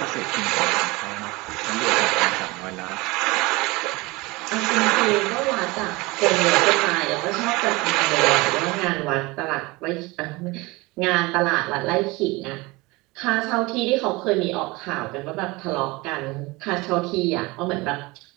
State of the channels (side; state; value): left; quieter; 23.1 dB